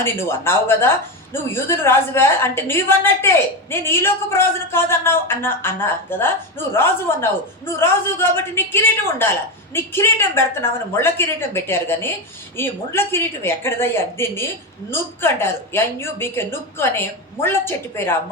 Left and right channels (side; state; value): both; normal; correlation 0.14